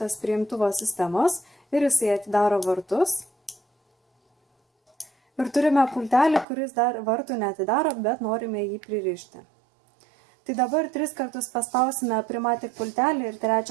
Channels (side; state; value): left; drops out; at 6.5 s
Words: prie imtuvo sistemos ir jisai atidaro vartus. Ir turime pultelį, kuris dar vartų neatidaro, bet norime jį pririšti. Tai dabar 3 kartus paspausime Primatic pultelį ir